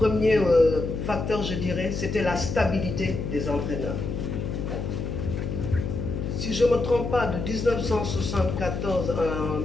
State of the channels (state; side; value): noise; left; hum, 3 dB below the sound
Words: facteur, je dirais, c'était la stabilité des entraîneurs. Si je ne me trompe pas, de 1974 à